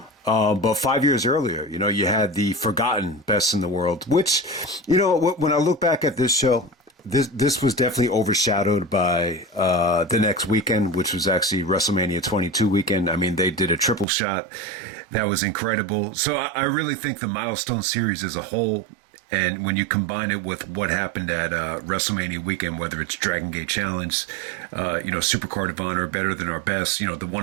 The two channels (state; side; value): drops out; left; at 14.1 s